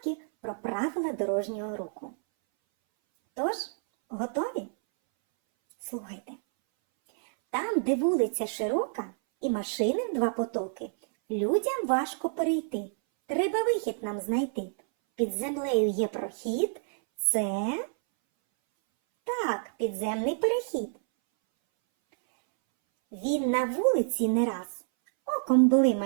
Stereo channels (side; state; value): left; silent; 59 dB below the other